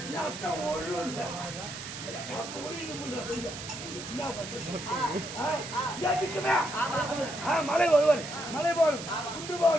நான் ஒழுந்த மலை வருவார் மலை போடும் குண்டு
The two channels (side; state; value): right; noise; hiss, 9 dB below the sound